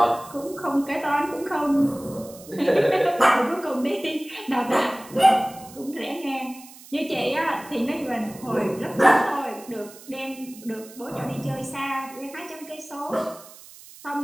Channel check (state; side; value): noise; right; hiss, 19 dB below the sound